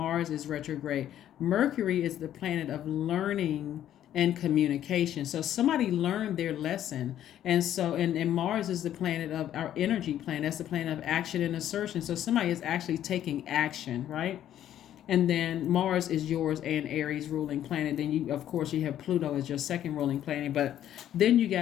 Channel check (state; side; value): quieter; right; 11.3 dB